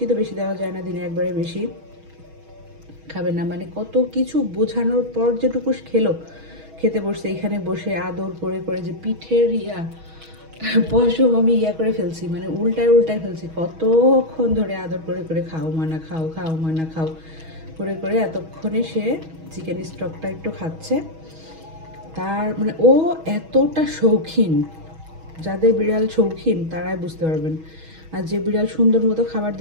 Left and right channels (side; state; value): left; late; 6.2 ms